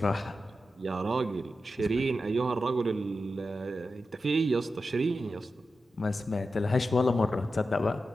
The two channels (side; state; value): both; normal; correlation 0.91